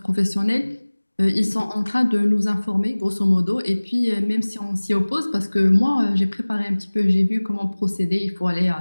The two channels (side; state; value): both; inverted; correlation -1.00